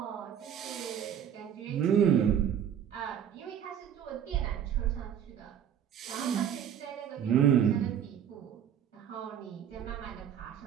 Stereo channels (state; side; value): quieter; left; 9.2 dB